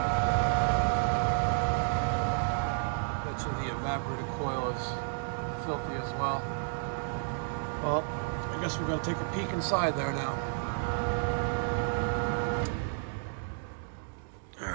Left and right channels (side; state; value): left; silent; digital silence